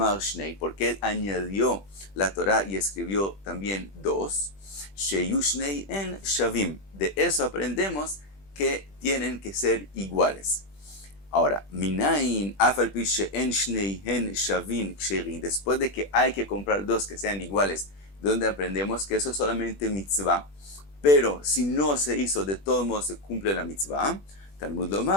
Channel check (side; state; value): right; late; 20 ms